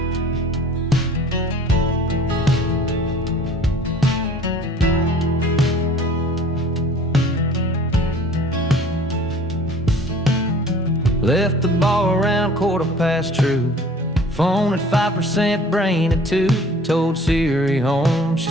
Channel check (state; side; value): normal; both; correlation 0.49